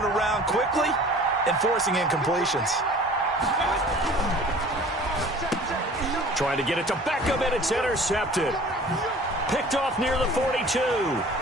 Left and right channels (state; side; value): normal; both; correlation 0.46